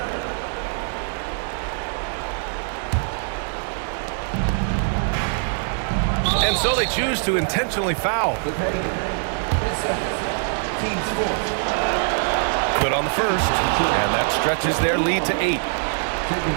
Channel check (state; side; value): silent; left; 63 dB below the other